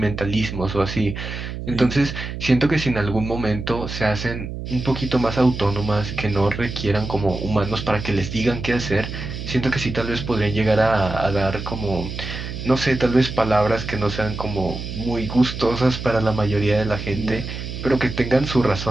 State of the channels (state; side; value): noise; right; hum, 7 dB below the sound